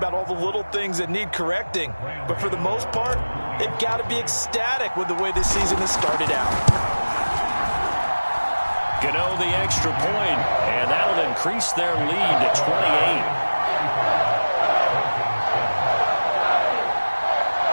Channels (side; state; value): both; inverted; correlation -1.00